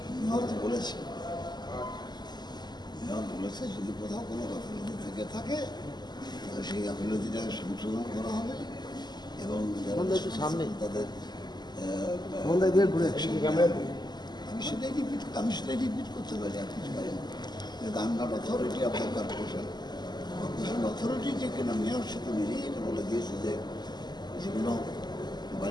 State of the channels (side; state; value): right; late; 0.21 ms